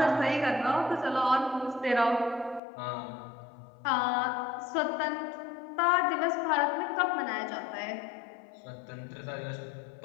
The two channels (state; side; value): drops out; right; at 2.6 s